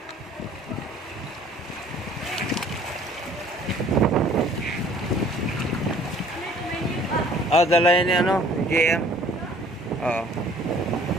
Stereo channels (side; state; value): both; normal; correlation 0.54